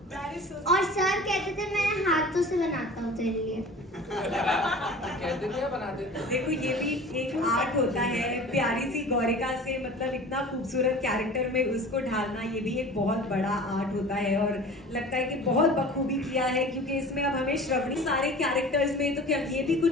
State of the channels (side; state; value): both; normal; correlation 0.40